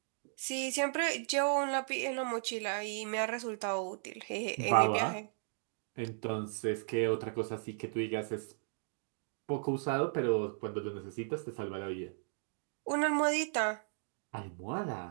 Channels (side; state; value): left; silent; digital silence